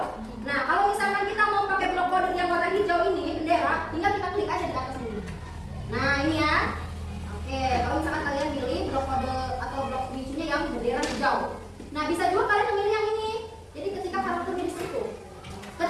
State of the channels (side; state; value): both; identical; correlation 1.00